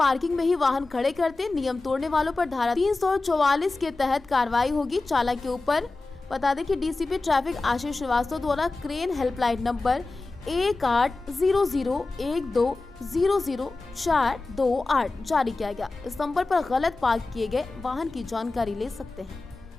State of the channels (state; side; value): quieter; right; 3.4 dB